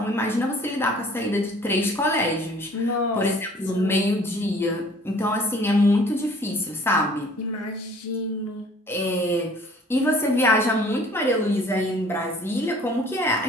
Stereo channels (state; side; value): normal; both; correlation 0.53